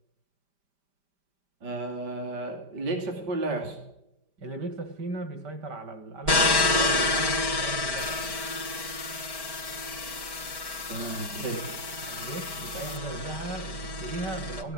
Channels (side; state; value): left; late; 5.1 ms